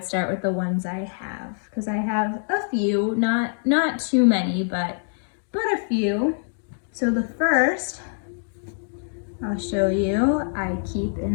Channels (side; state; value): right; silent; digital silence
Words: start with the ones I have because I have a few, not too many, but a few. So the first I'll show you, I keep